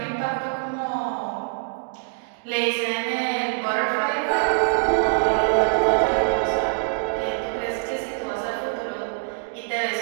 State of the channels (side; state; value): left; silent; digital silence